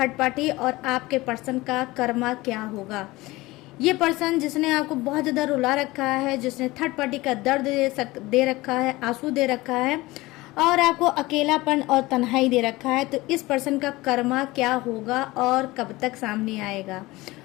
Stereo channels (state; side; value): quieter; right; 20.1 dB